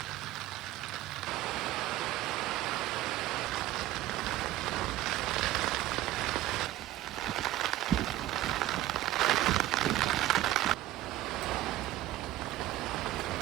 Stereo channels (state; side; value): quieter; left; 15.1 dB